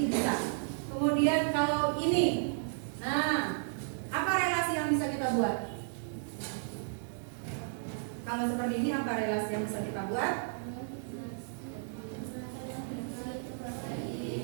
bisa. Kemudian kalau ini, nah, apa relasi yang bisa kita buat? Kalau seperti ini apa relasi yang bisa kita buat?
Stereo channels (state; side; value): silent; left; digital silence